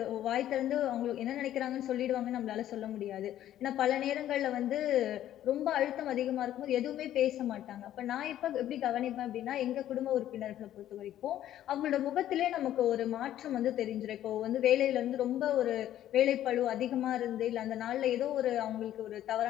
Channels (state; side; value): quieter; right; 12.2 dB